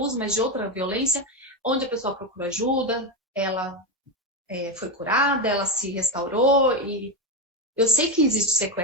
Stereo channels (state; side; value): normal; both; correlation 0.10